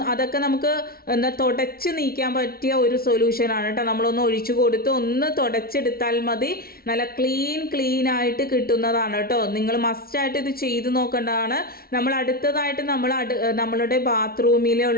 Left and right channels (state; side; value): late; right; 0.44 ms